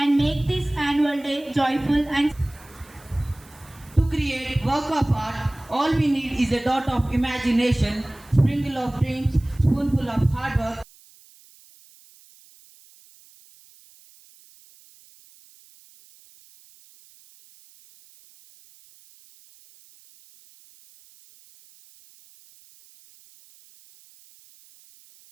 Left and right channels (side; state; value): right; noise; hiss, 26 dB below the sound